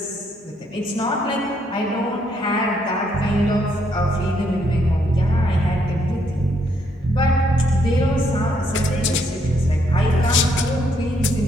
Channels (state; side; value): normal; both; correlation 0.72